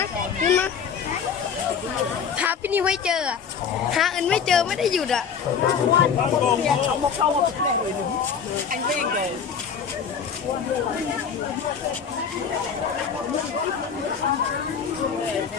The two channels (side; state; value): right; quieter; 6.8 dB